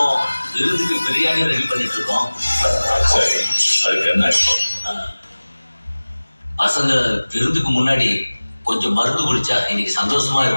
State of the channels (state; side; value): inverted; both; correlation -1.00